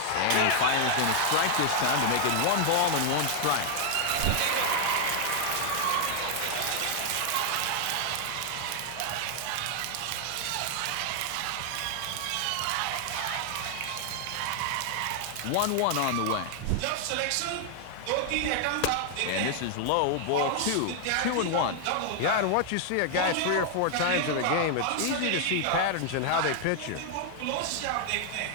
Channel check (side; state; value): both; different; correlation 0.00